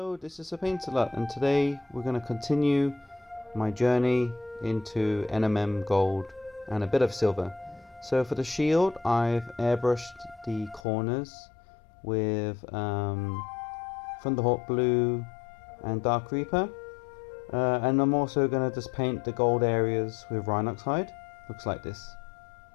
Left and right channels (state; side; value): drops out; right; at 10.9 s